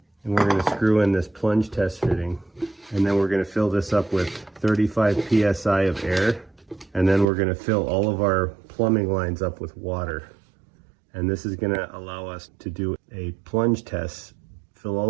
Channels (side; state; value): left; drops out; at 7.2 s